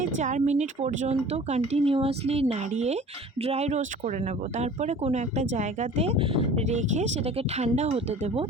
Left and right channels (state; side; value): normal; both; correlation 0.44